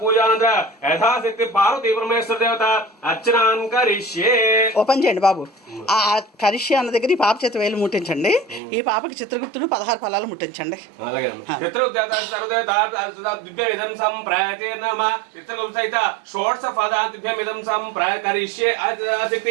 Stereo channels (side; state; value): left; drops out; at 8.6 s